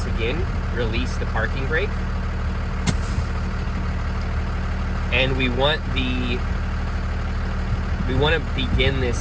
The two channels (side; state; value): both; identical; correlation 1.00